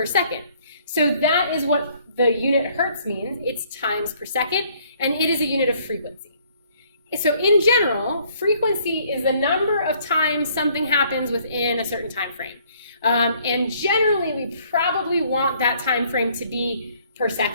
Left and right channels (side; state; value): both; inverted; correlation -0.62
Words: second. So that is what the unit hertz means. It's times per second, and it is a unit of frequency. So in general, frequency is the number of times something happens within a certain time frame. And generally, we probably want that time frame to be per